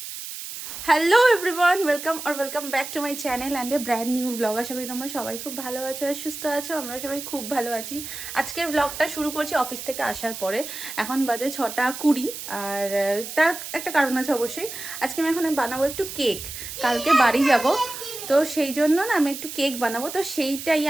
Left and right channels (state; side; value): noise; right; hiss, 9 dB below the sound